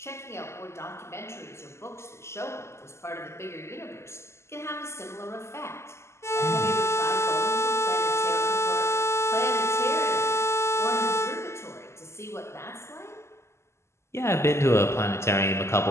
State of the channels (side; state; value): right; late; 0.13 ms